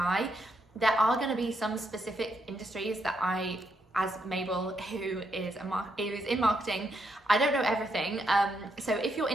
There are going to be some specific industries that I, as Mabel, who is in marketing, I don't know everything. So if your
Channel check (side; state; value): both; normal; correlation 0.78